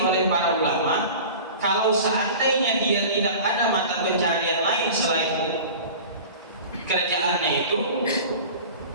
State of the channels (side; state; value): both; inverted; correlation -0.38